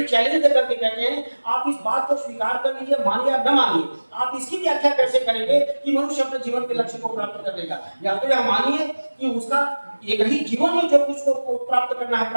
चैलेंज देकर के कहते हैं आप इस बात को स्वीकार कर लीजिए, मानिए या न मानिए, आप इसकी व्याख्या कैसे करेंगे कि मनुष्य अपने जीवन के लक्ष्य को प्राप्त कर लेगा। या तो यह मानिए कि उसका एक ही जीवन में जो कुछ को प्राप्त करना है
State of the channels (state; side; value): inverted; both; correlation -1.00